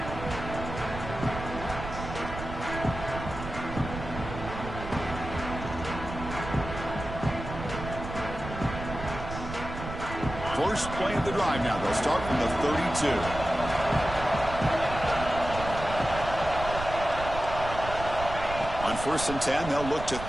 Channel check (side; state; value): right; noise; rumble, 8 dB below the sound